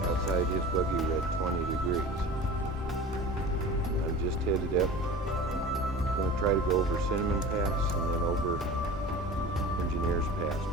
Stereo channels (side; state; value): both; normal; correlation 0.37